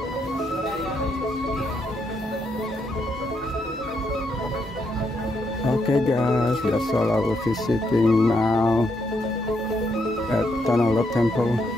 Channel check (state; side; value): normal; both; correlation 0.77